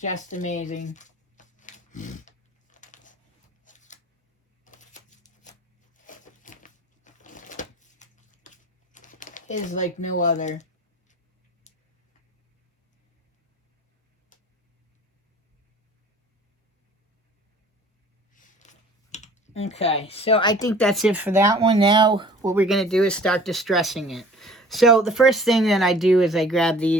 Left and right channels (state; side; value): normal; both; correlation 0.49